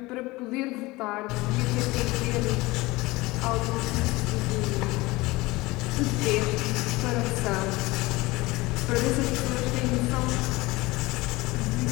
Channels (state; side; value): quieter; right; 21.2 dB